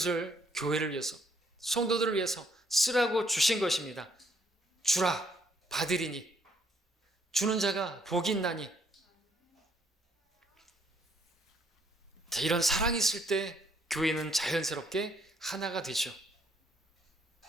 교회를 위해서, 성도들을 위해서 쓰라고 주신 것입니다. 주라 받으리니 주는 자가 복이 있나니. 이런 사랑이 있을 때 교회는 자연스럽게 하나가 되죠.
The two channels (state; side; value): normal; both; correlation 0.67